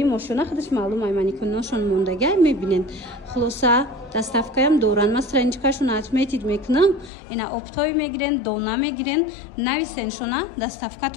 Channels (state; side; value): drops out; right; at 7.1 s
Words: мошина худаш маълум ай маникеношон мондагӣ мебинен. хулоса доставкаям доранд. ма страничкашон отметид мекунам. ина оптои мегирен, дона мегирен, нависеншона